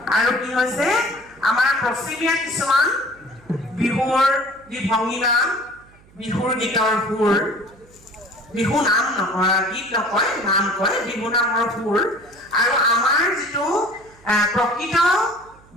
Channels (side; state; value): right; noise; hum, 27 dB below the sound